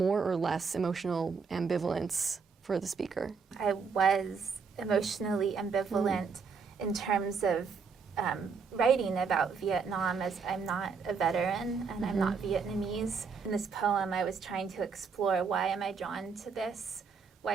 or less emotional ambivalence for the speaker? I was emotionally ambivalent in terms of writing about Vietnam, as I'm not a veteran and I'm not Vietnamese. In this poem, I was trying to explore, why am I drawn to this?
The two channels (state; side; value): quieter; left; 5.4 dB